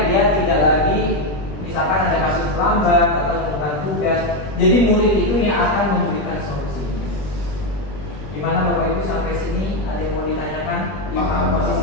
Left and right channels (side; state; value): right; late; 20 ms